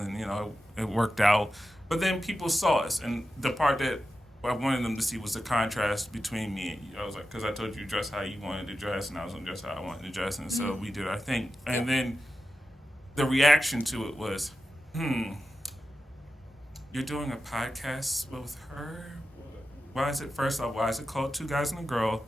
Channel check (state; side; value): normal; both; correlation 0.91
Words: it worked out. But then people saw us, and the part that I wanted them to see was the contrast between me and you. I was like, because I told you dress how you wanted to dress, and I was going to dress how I wanted to dress, and so we did our thing. And then the reaction to it was, you're doing a podcast with her? Why is it called Two Guys and a Girl?